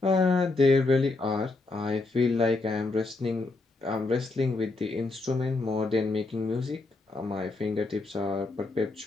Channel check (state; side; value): quieter; right; 3.4 dB